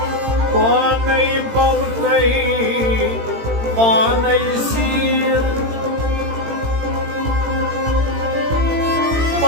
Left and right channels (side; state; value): left; late; 18 ms